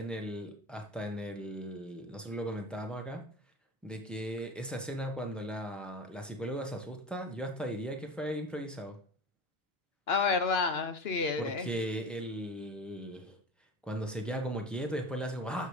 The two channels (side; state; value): both; normal; correlation 0.31